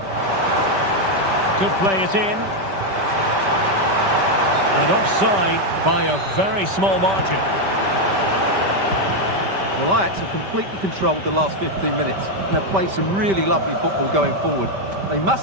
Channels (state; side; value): late; left; 5.1 ms